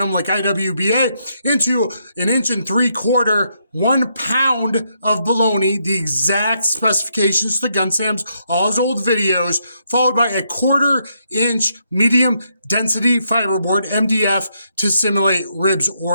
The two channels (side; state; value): both; inverted; correlation -0.77